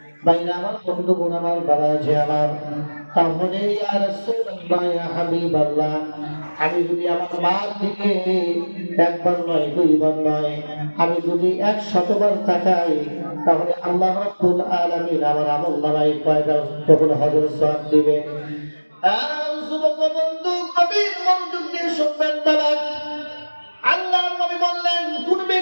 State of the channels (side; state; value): both; inverted; correlation -1.00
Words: বাইরে আমার বন্ধুগণ আমার বাবাজি আমার তাহলে ইয়া রাসূলুল্লাহ ইয়া হাবিবাল্লাহ আমি যদি আমার মার দিকে একবার নয় দুইবার নয় আমি যদি 100 বার তাকাই তাহলে আল্লাহ রাব্বুল আলামিন আমার আমলনামায় কয়বার কবুল হজের সওয়াব দিবে যুবক বন্ধু কবির মনোযোগ দিয়ে শুনবেন বাবা আল্লাহর নবী বললেন কোন